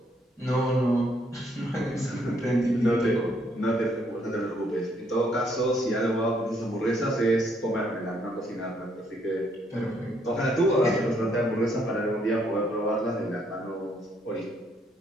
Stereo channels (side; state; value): both; normal; correlation 0.70